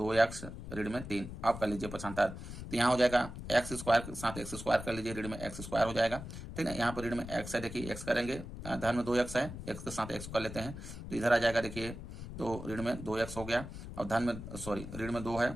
ऋण में 3। आप कर लीजिए पक्षांतर, तो यहाँ हो जाएगा एक्स स्क्वायर के साथ एक्स स्क्वायर कर लीजिए, ऋण में एक्स स्क्वायर हो जाएगा, ठीक है। यहाँ पर ऋण में x है, देखिए x करेंगे, धन में 2x है, x के साथ x कर लेते हैं तो इधर आ जाएगा देखिए, तो ऋण में 2x हो गया और धन में सॉरी ऋण में 2 है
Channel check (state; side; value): noise; left; rumble, 10 dB below the sound